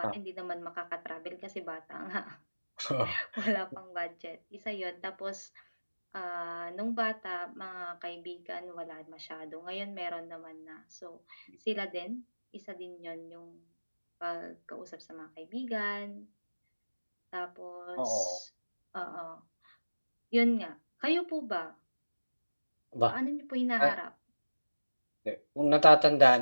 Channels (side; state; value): both; inverted; correlation -1.00